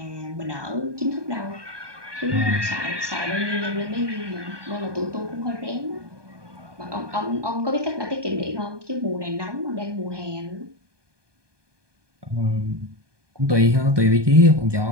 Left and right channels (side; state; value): left; late; 1.2 ms